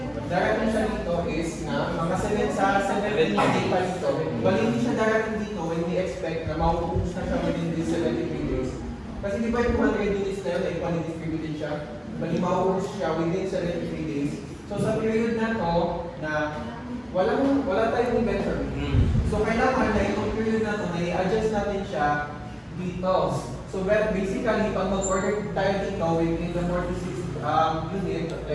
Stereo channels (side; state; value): both; identical; correlation 1.00